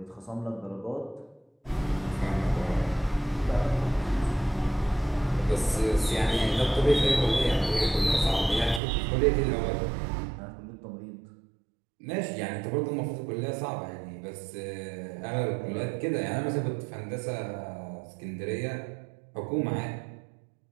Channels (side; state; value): left; drops out; at 8.8 s